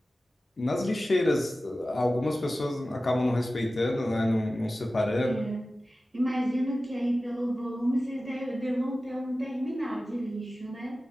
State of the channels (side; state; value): both; normal; correlation 0.95